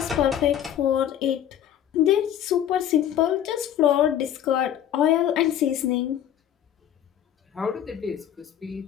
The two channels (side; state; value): right; quieter; 10.5 dB